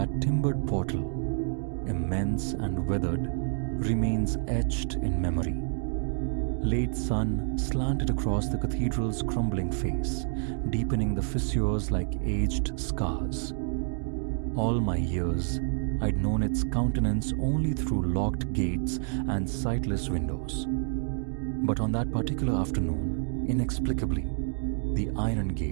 timbered portal, immense and weathered, remains etched in memory. Late sun slanted across the cathedral's crumbling face, deepening the fissures like aged scars. All my years, I'd known its countenance only through locked gates and sightless windows. But on that particular afternoon, inexplicably, the iron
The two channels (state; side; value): silent; left; digital silence